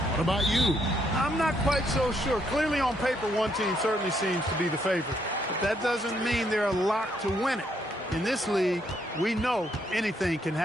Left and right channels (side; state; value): both; normal; correlation 0.73